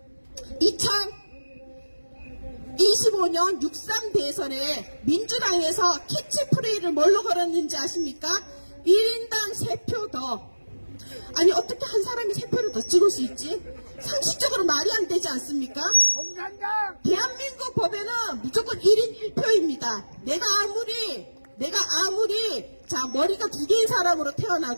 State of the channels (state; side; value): inverted; both; correlation -1.00